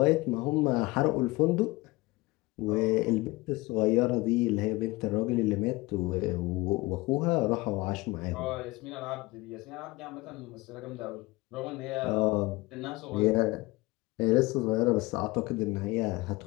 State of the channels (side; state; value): right; quieter; 21.9 dB